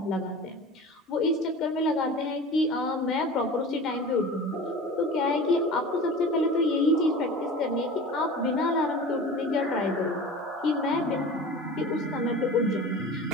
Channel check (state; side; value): normal; both; correlation 0.36